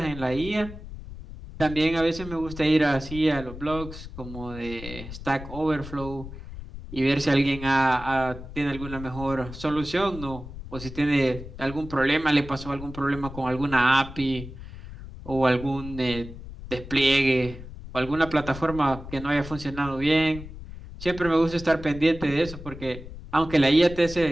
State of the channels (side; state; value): left; noise; rumble, 13 dB below the sound